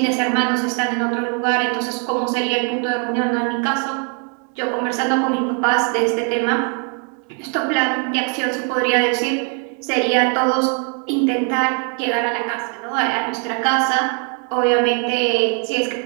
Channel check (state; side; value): quieter; left; 38.2 dB